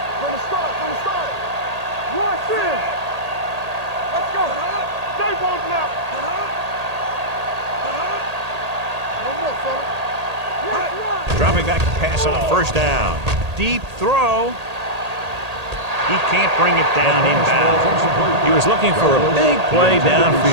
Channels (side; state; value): left; late; 1.8 ms